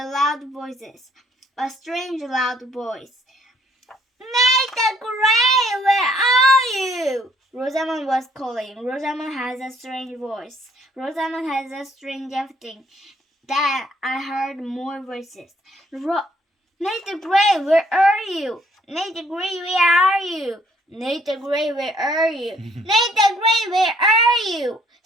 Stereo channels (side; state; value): both; normal; correlation 0.64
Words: voices. A strange loud voice. Nathan Gray, where are you? Rosamond was calling. Rosamond has a strange voice. Rosamond has a strange everything. Then I heard more voices. Nathan Gray, where are you? Nathan Gray, where are you? Nathan Gray, where are you? Nathan Gray, where are you?